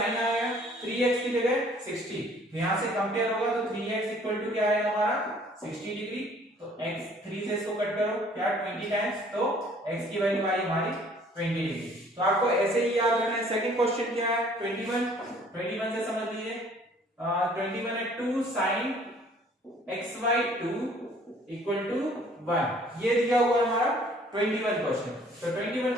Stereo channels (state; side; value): normal; both; correlation 0.56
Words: आया, 3x की जगह 60, तो यहाँ से कंपेयर होगा तो 3x इक्वल टू क्या आएगा हमारा 60 डिग्री, तो x 3 से इसको कट करो क्या 20 टाइम्स, तो x की वैल्यू आई हमारी 20 डिग्री। तो आपको ऐसे ही याद रखना है। सेकंड क्वेश्चन क्या है 21 से समझ लीजिए, 21 है 2 sin x/2 इक्वल टू 1, ये दिया हुआ है हमारा 21 क्वेश्चन। तो 21